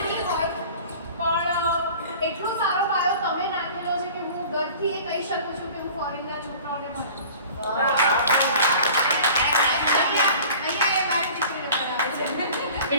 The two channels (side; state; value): both; inverted; correlation -0.44